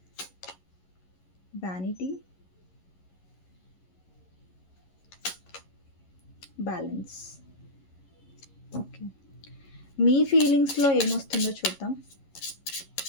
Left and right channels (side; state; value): right; late; 11 ms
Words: vanity, balance. Okay. మీ ఫీలింగ్స్లో ఏమొస్తుందో చూద్దాం.